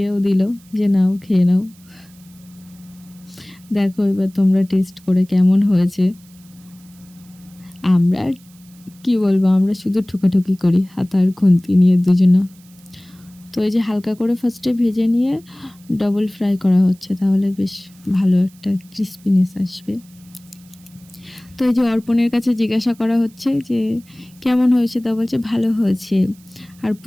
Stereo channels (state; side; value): noise; right; hiss, 28 dB below the sound